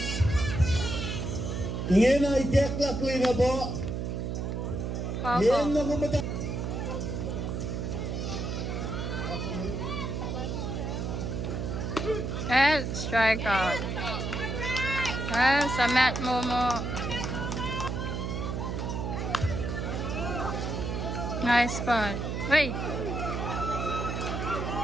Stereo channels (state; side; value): noise; right; hum, 2 dB below the sound